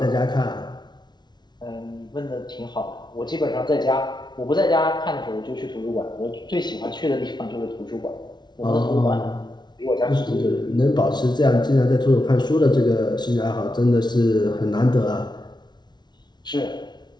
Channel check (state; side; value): late; right; 0.20 ms